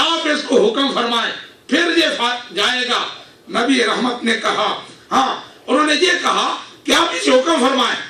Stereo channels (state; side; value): identical; both; correlation 1.00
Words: اس کو حکم فرمائیں پھر یہ جائے گا. نبی رحمت نے کہا ہاں. انہوں نے یہ کہا کہ آپ اسے حکم فرمائیں،